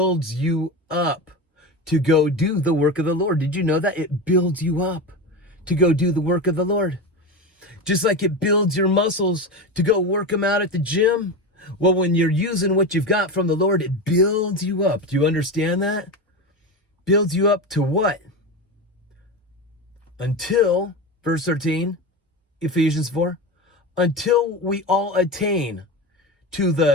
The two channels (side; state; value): both; normal; correlation 0.22